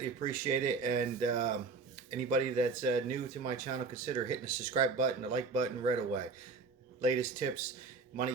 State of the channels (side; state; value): left; quieter; 4.4 dB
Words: appreciate it. And anybody that's new to my channel, consider hitting the subscribe button, the like button right away. Latest tips,